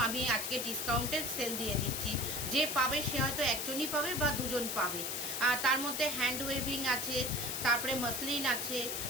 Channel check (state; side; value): noise; left; hiss, 2 dB below the sound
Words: আমি আজকে ডিসকাউন্টে সেল দিয়ে দিচ্ছি। যে পাবে সে হয়তো একজনই পাবে বা দুজন পাবে। আর তার মধ্যে হ্যান্ড ওয়েভিং আছে, তারপরে মসলিন আছে,